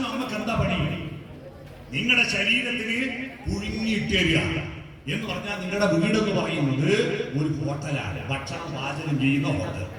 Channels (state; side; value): identical; both; correlation 1.00